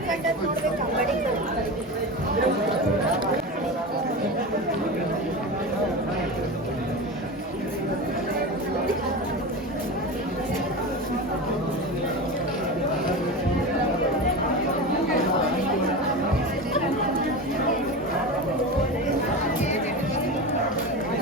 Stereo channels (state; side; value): normal; both; correlation 0.25